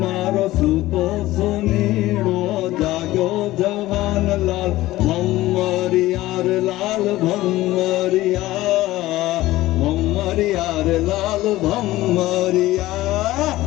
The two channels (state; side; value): quieter; right; 16.8 dB